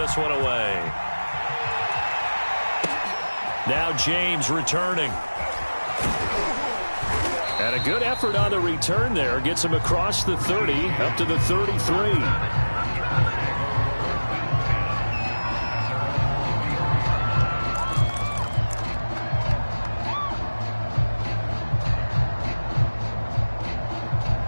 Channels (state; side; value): inverted; both; correlation -1.00